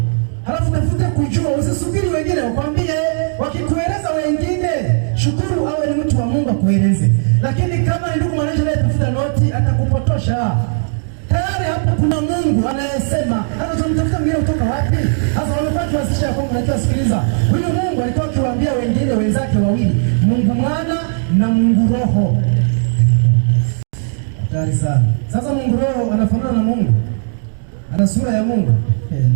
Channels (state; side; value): silent; left; digital silence